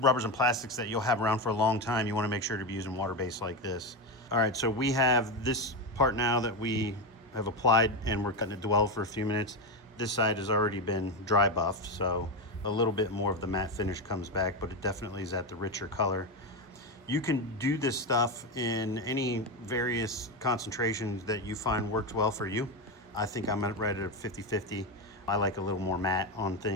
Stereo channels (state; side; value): normal; both; correlation 0.12